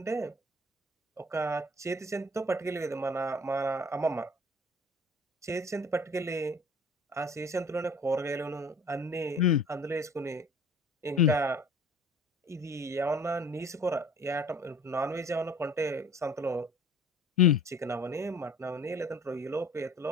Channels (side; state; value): both; normal; correlation 0.48